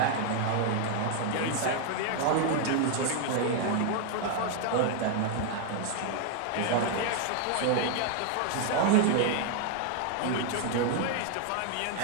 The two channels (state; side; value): different; both; correlation 0.00